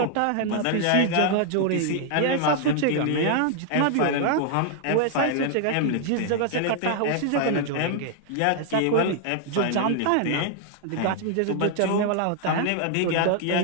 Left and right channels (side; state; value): both; different; correlation 0.00